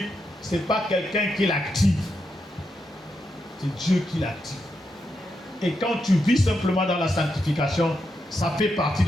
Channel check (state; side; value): normal; both; correlation 0.84